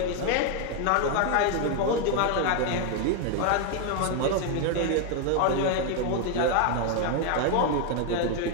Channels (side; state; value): both; different; correlation 0.01